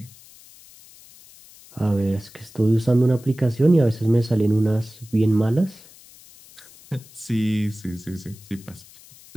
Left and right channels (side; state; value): left; noise; hiss, 23 dB below the sound